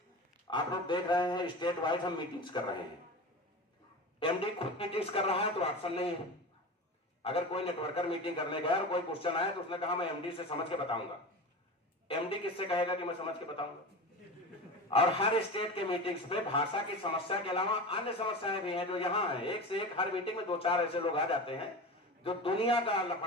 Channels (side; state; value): both; normal; correlation 0.29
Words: आप लोग देख रहे हैं स्टेट वाइज हम मीटिंग्स कर रहे हैं। MD खुद मीटिंग्स कर रहा है तो ऑप्शन नहीं है। अगर कोई नेटवर्कर मीटिंग करने गया और कोई क्वेश्चन आया तो उसने कहा मैं MD से समझ के बताऊंगा। MD किससे कहेगा कि मैं समझ के बताऊंगा? और हर स्टेट के मीटिंग्स पे भाषा की समस्या के अलावा अन्य समस्याएं भी हैं जो यहाँ है। एक से एक हर मीटिंग में 2-4 ऐसे लोग आ जाते हैं जो दुनिया का